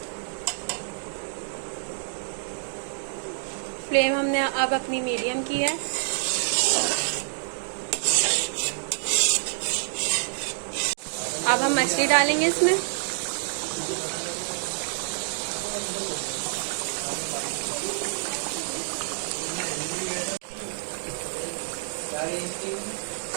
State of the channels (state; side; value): silent; left; digital silence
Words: फ्लेम हमने अब अपनी मीडियम की है। अब हम मछली डालेंगे इसमें।